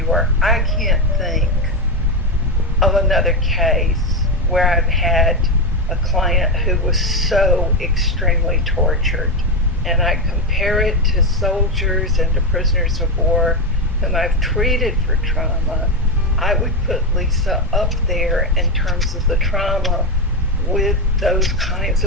work, I can't think of another case where I've had a client who was so extremely tortured. And I compare it to soldiers and to prisoners of war whom I've treated for trauma. I would put Lisa up there in terms of the trauma with those kinds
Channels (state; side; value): normal; both; correlation 0.10